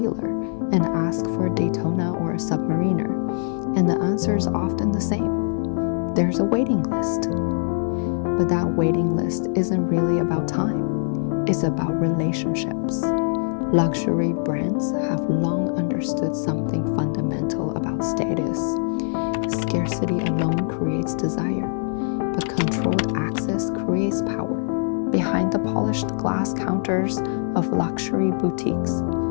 and ask for a Daytona or a Submariner, and the answer is often the same. There's a waiting list. But that waiting list isn't really about time. It's about relationships. Luxury brands have long understood something fundamental about status. Scarcity alone creates desire, but controlled access creates power. Behind the polished glass counters of luxury boutiques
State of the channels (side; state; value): right; silent; digital silence